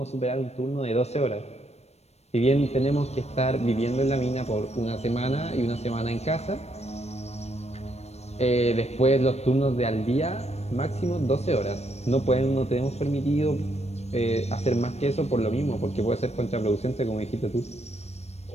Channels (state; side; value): late; right; 0.31 ms